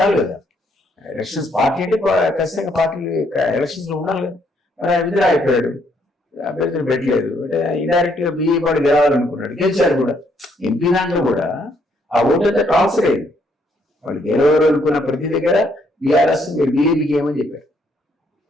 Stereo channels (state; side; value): normal; both; correlation 0.70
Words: కదా. ఎలక్షన్స్ పార్టీ అంటే ఖచ్చితంగా పార్టీ ఎలక్షన్స్ లో ఉండాలి కదా. మరి ఆయన విధులు అయిపోయాడు, అభ్యర్థులు పెట్టలేదు అంటే ఇండైరెక్ట్ గా బీఏ పార్టీ గెలవాలనుకున్నాడు, గెలిచారు కూడా. ఎంపీ దాంట్లో కూడా ఆ ఓటు అంతా ట్రాన్స్ఫర్ అయింది. వాళ్ళు గెలవరు అనుకున్న ప్రతి దగ్గర బీఆర్ఎస్ మీరు బీజేపీకి ఏమని చెప్పారు.